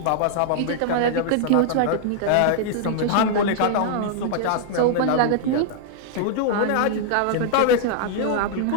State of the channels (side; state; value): both; different; correlation -0.01